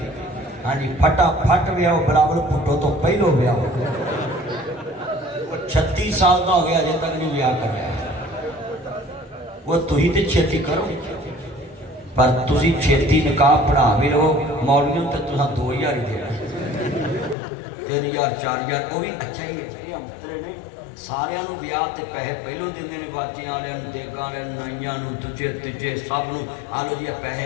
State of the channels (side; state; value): right; drops out; at 17.4 s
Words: हाँ जी फटाफट ब्याह बराबर पुटो तो पहलो ब्याह 36 साल का हो गया अजे तक नहीं ब्याह कर रहा वो तुही तो छेती करो पर तुसी छेती निकाह पढ़ा भी रहो मौलवियों तो तुसा 2000 ही देना 3000 4000 वो भी अच्छा ही है। अंतरे ने सारियां नू ब्याह ते पैसे पहलों देंदे ने बाजियां वालियां नू देगां वालियां नू नाइयां नू दूजे तीजे सब नू आ लो जी पैसे